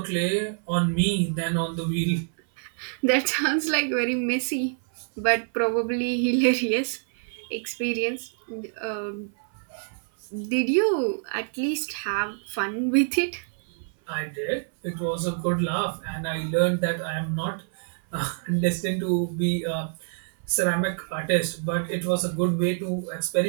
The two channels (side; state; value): left; silent; 58 dB below the other